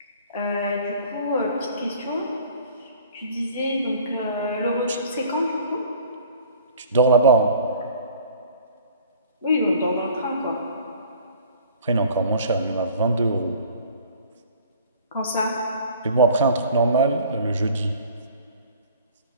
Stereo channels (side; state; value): both; inverted; correlation -0.50